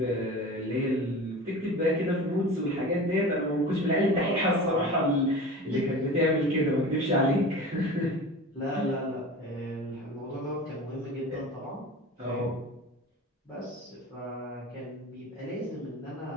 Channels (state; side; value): normal; both; correlation 0.35